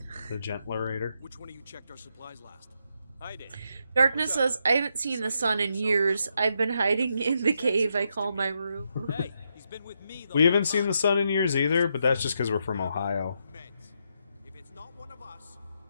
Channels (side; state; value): both; inverted; correlation -0.80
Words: The Gentlerator. Which one of you checked our supplies last? I did. Darkness says, I haven't seen the sun in years. I've been hiding in the cave I call my room. Hey, he's been with me the We haven't seen the sun in years either, but that's just because we're from Ohio. If it's not one of us,